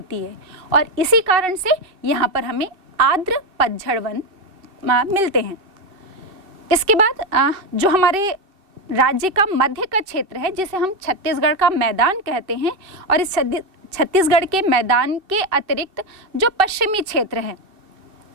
है, और इसी कारण से यहाँ पर हमें आर्द्र पतझड़ वन मिलते हैं। इसके बाद जो हमारे राज्य का मध्य का क्षेत्र है, जिसे हम छत्तीसगढ़ का मैदान कहते हैं, और इस छत्तीसगढ़ के मैदान के अतिरिक्त जो पश्चिमी क्षेत्र है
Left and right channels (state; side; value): late; left; 2.6 ms